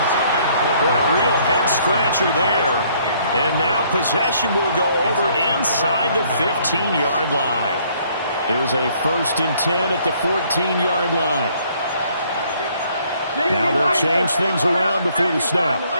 Boy, a real head-scratcher there. And now possession will go over inside the 15-yard line. Here's a 1st and 10 at the 14-yard line. Now they'll change things around before the snap.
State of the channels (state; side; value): inverted; both; correlation -0.64